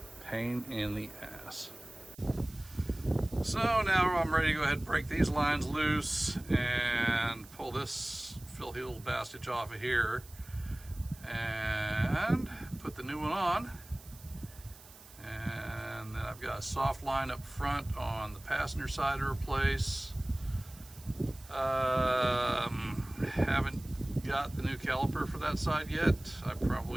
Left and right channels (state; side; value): noise; right; hiss, 21 dB below the sound